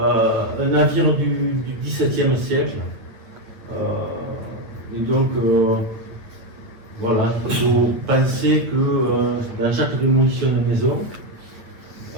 navire du XVIIe siècle. Et donc, voilà, il faut penser que dans chaque démolition de maison,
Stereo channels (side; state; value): left; late; 8.8 ms